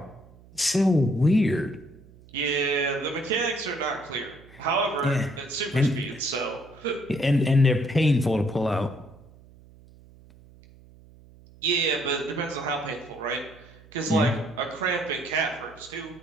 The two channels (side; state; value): right; noise; hum, 24 dB below the sound